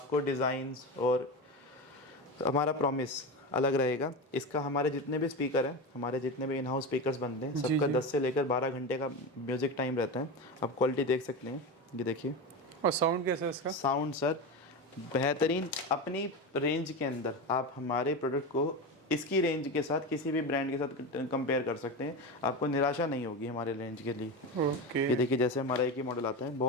डिज़ाइंस और हमारा प्रॉमिस अलग रहेगा। इसका हमारे जितने भी स्पीकर हैं, हमारे जितने भी इन हाउस स्पीकर्स बनते हैं, सबका 10 से लेकर 12 घंटे का म्यूज़िक टाइम रहता है। आप क्वालिटी देख सकते हैं, ये देखिए। और साउंड कैसा है इसका? साउंड सर बेहतरीन, अपनी रेंज के अंदर आप हमारे प्रोडक्ट को इसकी रेंज के साथ किसी भी ब्रांड के साथ कंपेयर कर सकते हैं, आपको निराशा नहीं होगी हमारे रेंज के लिए। ओके। ये देखिए जैसे हमारा एक ही मॉडल आता है,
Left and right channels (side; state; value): both; normal; correlation 0.21